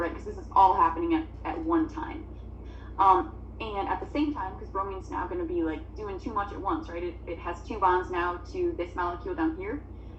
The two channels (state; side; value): identical; both; correlation 1.00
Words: Because this is all happening at one time. And at the same time, because bromine's now going to be like doing too much at once, right? It has two bonds now to this molecule down here.